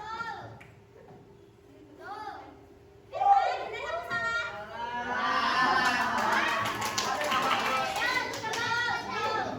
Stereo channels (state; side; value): identical; both; correlation 1.00